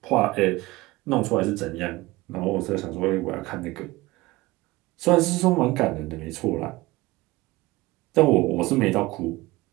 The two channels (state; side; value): quieter; left; 20.4 dB